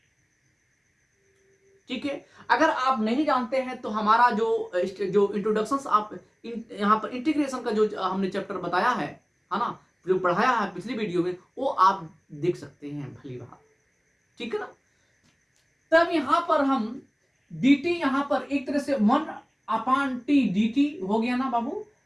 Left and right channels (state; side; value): identical; both; correlation 1.00